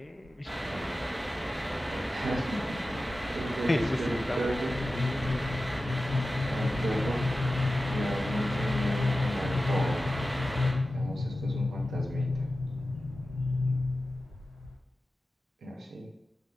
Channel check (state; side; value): normal; both; correlation 0.94